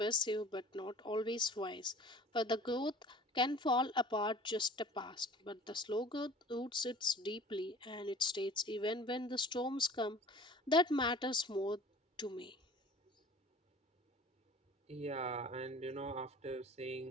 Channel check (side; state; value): both; normal; correlation 0.45